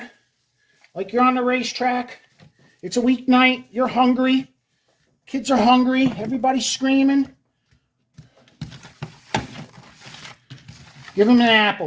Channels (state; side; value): identical; both; correlation 1.00